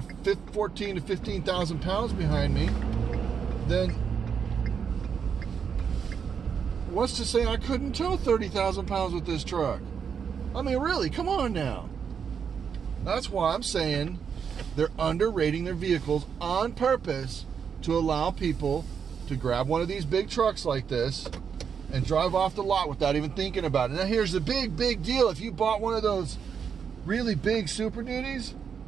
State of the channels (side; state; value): left; quieter; 7.0 dB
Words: 14 to 15,000 pounds behind me, then what's to say I couldn't tow 30,000 pounds with this truck? I mean, really, come on now. That's why I'm saying they're underrating their vehicles on purpose to allow people to grab one of these big trucks like this and drive off the lot without even thinking about it. Now, here's the big deal. If you bought one of those really big Super Duties